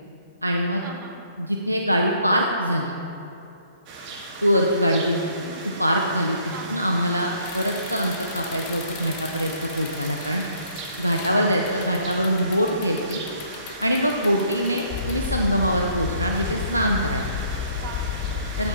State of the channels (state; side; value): inverted; both; correlation -0.63